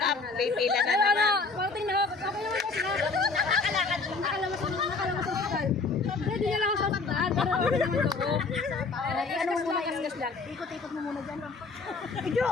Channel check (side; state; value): right; quieter; 4.2 dB